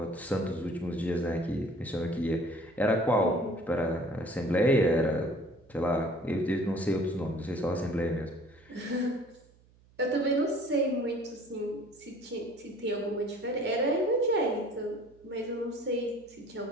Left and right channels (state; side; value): noise; right; hum, 29 dB below the sound